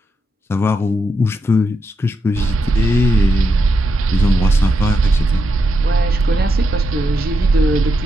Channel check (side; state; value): both; normal; correlation 0.83